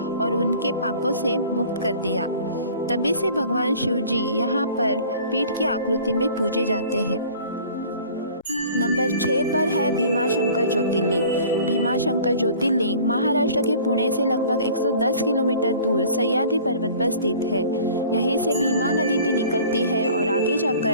और उनके पापों से मुक्त कर दिया। तभी से भगवान शिव जी यहाँ पर पीठ की आकृति में पूजे जाते हैं। नंबर 6 पर है भीमाशंकर ज्योतिर्लिंग। भीमाशंकर ज्योतिर्लिंग महाराष्ट्र के पुणे से लगभग 110 किलोमीटर दूर सह्याद्री पर्वत पर स्थित है। यहीं से भीमा नदी भी निकलती है और आगे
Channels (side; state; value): both; inverted; correlation -0.47